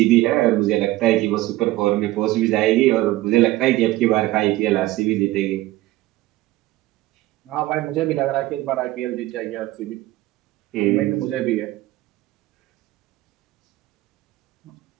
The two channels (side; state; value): left; quieter; 17.1 dB